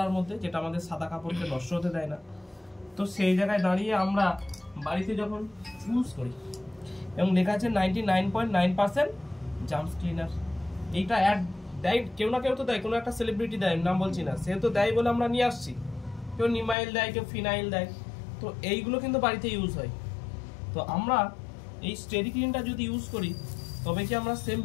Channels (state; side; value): drops out; right; at 16.8 s